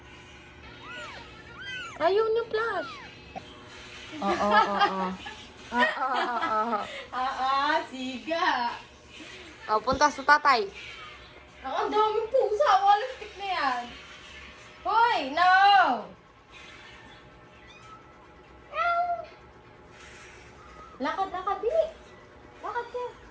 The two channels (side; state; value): both; identical; correlation 1.00